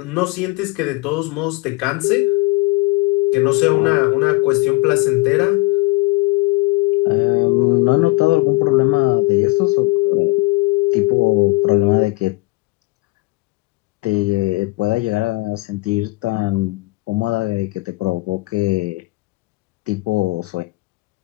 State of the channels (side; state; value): right; quieter; 23.2 dB